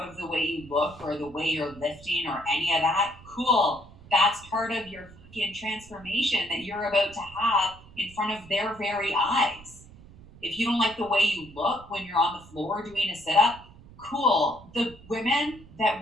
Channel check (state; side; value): noise; right; rumble, 21 dB below the sound